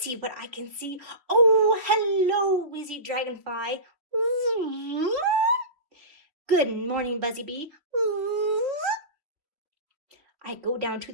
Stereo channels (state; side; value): late; left; 3.1 ms